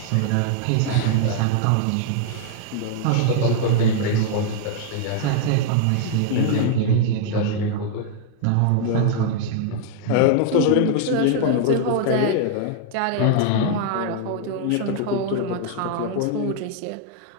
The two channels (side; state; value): both; different; correlation 0.00